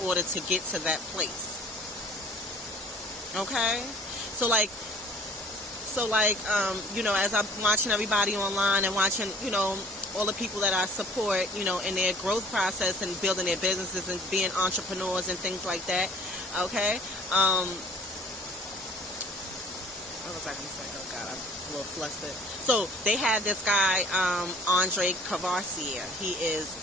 order to get to that place. Okay? So as I'm watching everybody online and watching, all the people that I support, in their growth process and building their businesses and being entrepreneurs and things like that. Okay? What was I going to say? Oh, God, I'm a little flustered. So, they had this guy, Andre Cavassier. He is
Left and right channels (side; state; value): both; normal; correlation 0.51